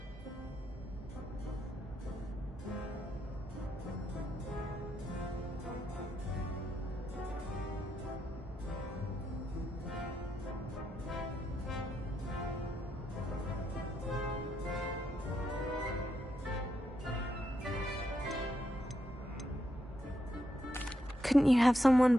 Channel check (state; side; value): normal; both; correlation 0.81